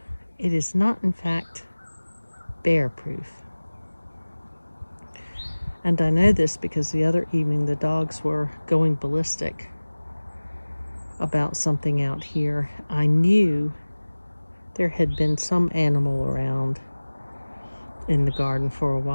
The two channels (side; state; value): both; inverted; correlation -1.00